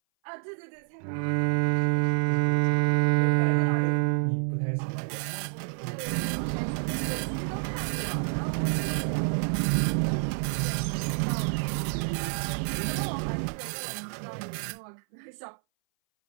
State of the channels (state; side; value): silent; left; 58 dB below the other